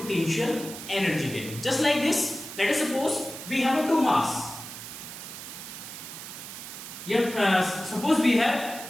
एनर्जी कहेंगे. Just like this, let us suppose we have two mass, suppose we have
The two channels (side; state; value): right; noise; hiss, 11 dB below the sound